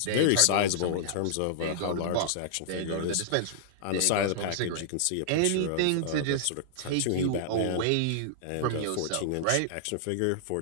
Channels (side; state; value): both; different; correlation -0.01